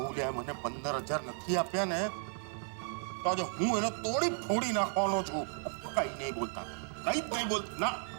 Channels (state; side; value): silent; left; 55 dB below the other